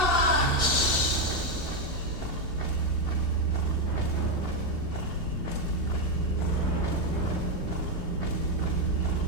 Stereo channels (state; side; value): late; right; 2.7 ms